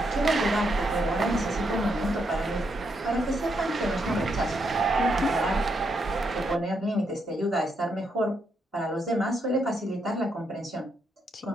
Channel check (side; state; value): both; normal; correlation 0.79